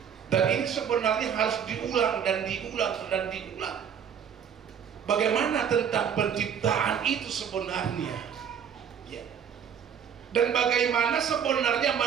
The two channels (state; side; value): quieter; left; 8.0 dB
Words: Dan ini sebenarnya harus diulang dan diulang dan diulang. Bagaimana tentang penciptaan itu sebenarnya, ya. Dan bagaimana sebenarnya